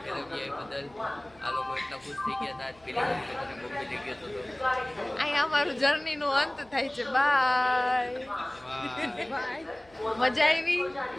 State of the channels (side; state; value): left; noise; hum, 28 dB below the sound